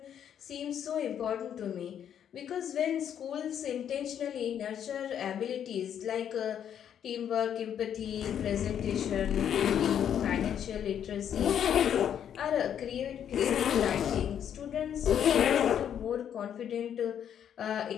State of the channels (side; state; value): right; quieter; 9.2 dB